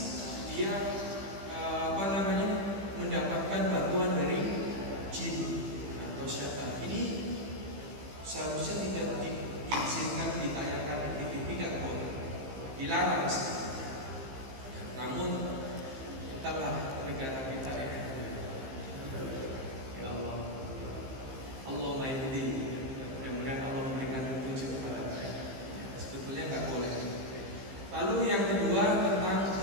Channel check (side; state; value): left; late; 15 ms